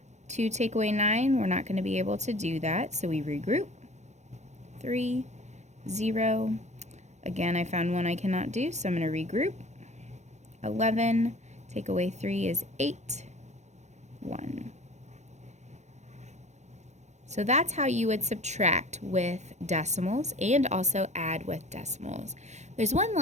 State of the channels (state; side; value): late; left; 0.34 ms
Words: 2 take away 9, we're not going to be able to do that, so we regroup. 3, 0. Again, I found one I cannot do, so I'm going to regroup. 11, take away 3 is 8, 1. So that's how you would subtract with decimals and also add with decimals. There's one